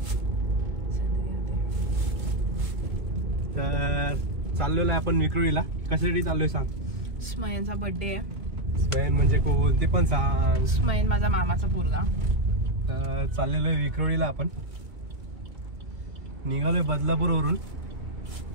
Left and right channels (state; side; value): late; left; 2.0 ms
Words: तर चाललेलो आहे आपण विक्रोळीला। कशासाठी चाललोय सांग? स्मयनचा बर्थडे आहे। स्मयन म्हणजे कोण ते पण सांग। स्मयन माझा मामाचा पोरगा। तर चाललेलो आहे विक्रोळीला आपण, निघालोय बदलापूरवरून।